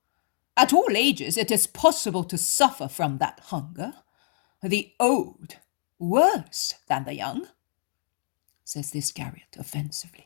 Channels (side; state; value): right; silent; digital silence